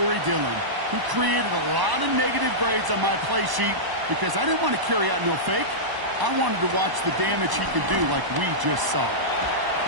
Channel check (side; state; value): left; late; 1.0 ms